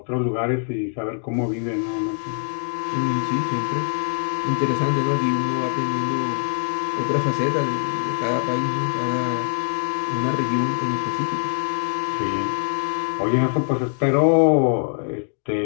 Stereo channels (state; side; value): silent; right; 59 dB below the other